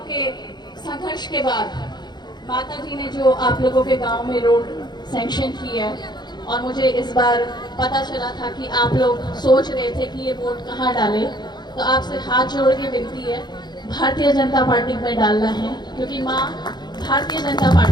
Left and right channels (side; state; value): right; late; 0.21 ms